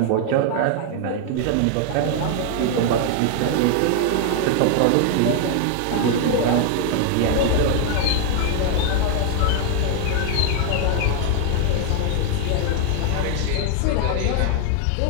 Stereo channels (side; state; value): both; different; correlation 0.00